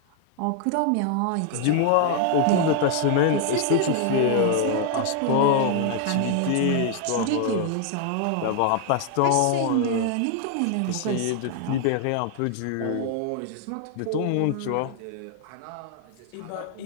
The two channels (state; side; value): different; both; correlation 0.00